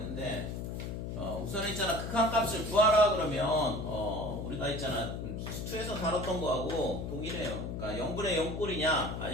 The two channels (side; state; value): left; noise; hum, 5 dB below the sound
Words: 우선 있잖아 극한값을 구하라 그러면 우리가 있잖아 수투에서 다뤘던 거하고 동일해요. 그러니까 0분의 0꼴이냐